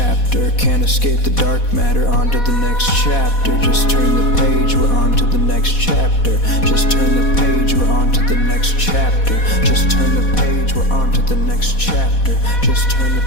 Can't escape the dark matter. On to the next chapter. Just turn the page, we're on to the next chapter. Just turn the page, we're on to the next chapter. Just turn the page, we're on to the next chapter. Just turn the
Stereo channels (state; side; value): late; right; 4.1 ms